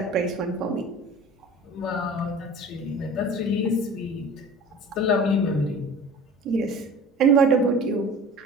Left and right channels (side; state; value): both; normal; correlation 0.41